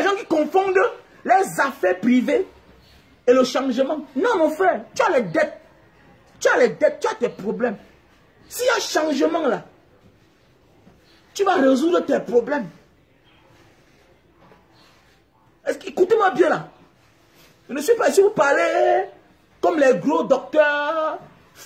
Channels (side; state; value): both; identical; correlation 1.00